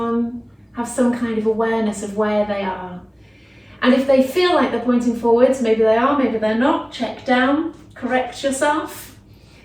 Have some kind of awareness of where they are. And if they feel like they're pointing forwards, maybe they are, maybe they're not, check down, correct yourself,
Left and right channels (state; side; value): identical; both; correlation 1.00